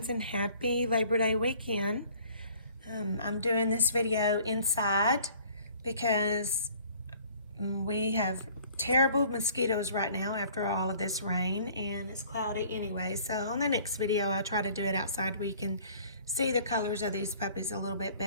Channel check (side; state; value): both; inverted; correlation -0.54